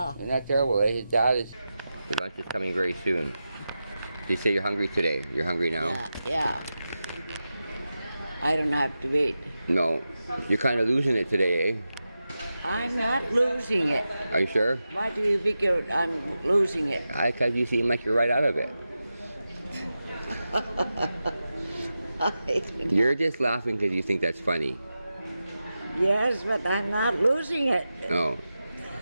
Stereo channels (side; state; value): both; inverted; correlation -0.92